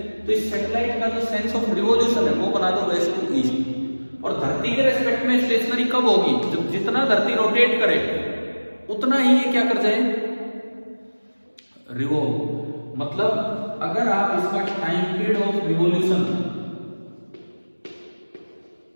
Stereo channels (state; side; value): inverted; both; correlation -1.00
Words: तो इस सैटेलाइट का जो सेंस ऑफ रिवॉल्यूशन है वो बना दो वेस्ट टू ईस्ट। और धरती के रेस्पेक्ट में स्टेशनरी कब होगी, जब जितना धरती रोटेट करे उतना ही ये क्या कर जाए, रिवॉल्व। मतलब अगर आप इसका टाइम पीरियड ऑफ रिवॉल्यूशन,